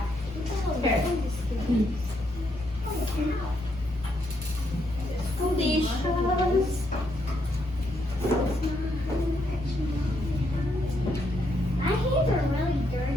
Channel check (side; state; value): both; normal; correlation 0.76